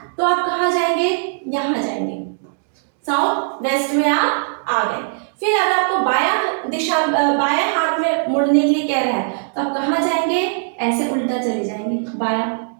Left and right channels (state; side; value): silent; left; digital silence